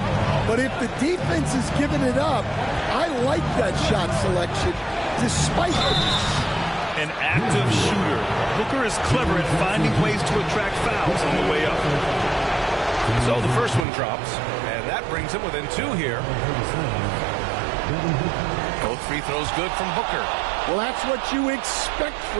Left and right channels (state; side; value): drops out; left; at 13.9 s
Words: but if the defense is giving it up, I like that shot selection, despite the miss. An active shooter. Booker is clever at finding ways to attract fouls on the way up. So the first one drops, and that brings him within 2 here. Both free throws good from Booker. Well, that's what you expect